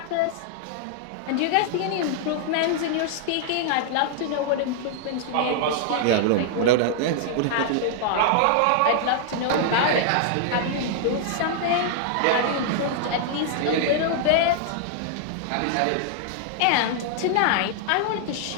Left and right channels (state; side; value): different; both; correlation -0.01